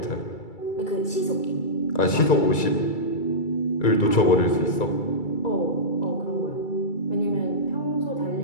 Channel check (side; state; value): right; late; 2.3 ms